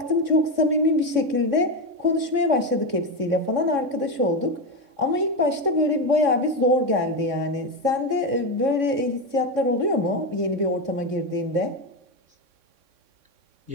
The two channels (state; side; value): late; left; 3.6 ms